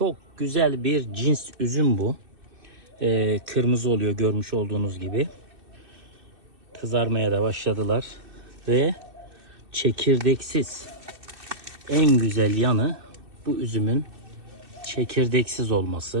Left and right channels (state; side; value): late; left; 2.7 ms